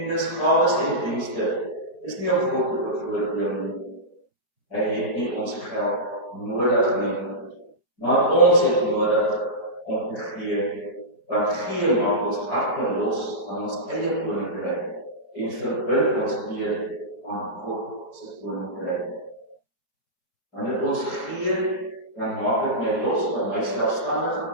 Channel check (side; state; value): right; late; 4.6 ms